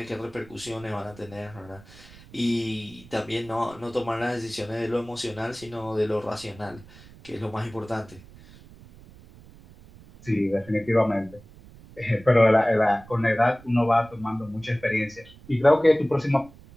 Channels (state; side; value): noise; right; rumble, 22 dB below the sound